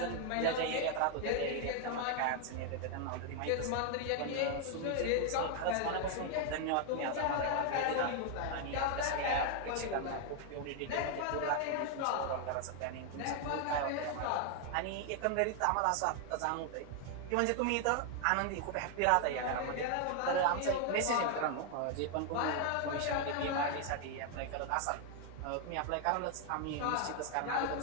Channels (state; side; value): different; both; correlation 0.00